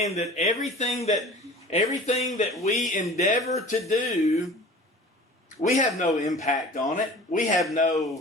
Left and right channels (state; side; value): normal; both; correlation 0.42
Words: that everything that we endeavor to do, we have no impact on it. We have